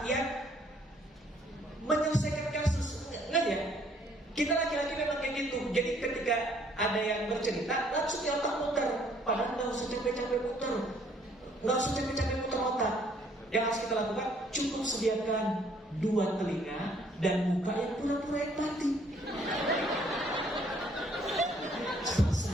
yang menyelesaikan kasus. Nggak ya? Kita laki-laki memang kayak gitu. Jadi ketika ada yang bercerita, langsung di otak muter. Padahal nggak usah capek-capek muter. Nggak usah capek-capek muter otak. Yang harus kita lakukan, cukup sediakan 2 telinga dan muka yang pura-pura empati.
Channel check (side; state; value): both; normal; correlation 0.63